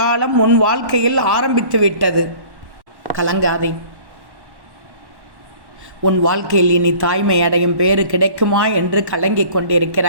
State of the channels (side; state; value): left; late; 1.1 ms